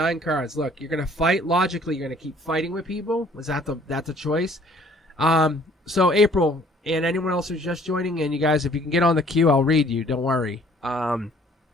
cards. Look, you're going to fight logically. You're going to keep fighting with people. Is that that's a choice? So April and anyone else who's just joining in, you guys, if you can get on the queue, I'll read you. Don't worry.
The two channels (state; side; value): normal; both; correlation 0.57